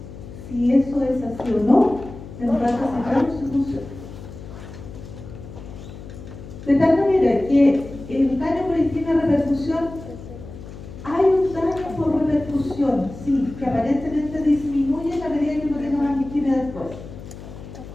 si eso es así o no en ratas y perros se funciona. De tal manera que el daño por isquemia repercusión, hay un daño por repercusión, sí, que aparentemente disminuye la medida que no tenga más isquemia después.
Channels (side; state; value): left; noise; hum, 14 dB below the sound